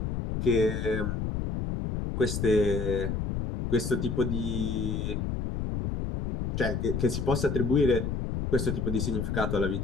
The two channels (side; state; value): left; noise; rumble, 2 dB below the sound